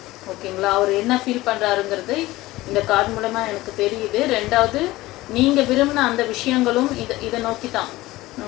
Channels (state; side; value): quieter; right; 18.2 dB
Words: ஓகேங்களா? அவர் என்ன ஃபீல் பண்ணுறாருங்கிறது இந்த கார்டு மூலமாக எனக்கு தெரியுது. ரெண்டாவது, நீங்கள் விரும்பின அந்த விஷயங்களும் இதை நோக்கி தான்,